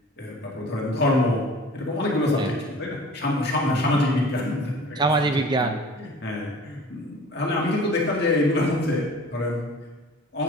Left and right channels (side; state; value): both; normal; correlation 0.45